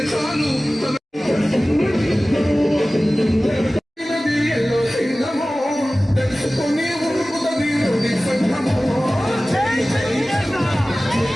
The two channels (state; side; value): normal; both; correlation 0.97